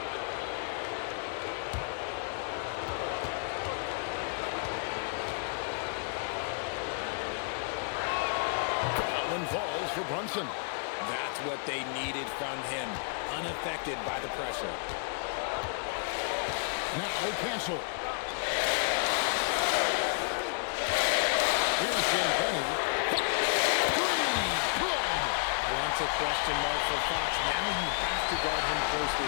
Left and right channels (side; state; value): right; silent; digital silence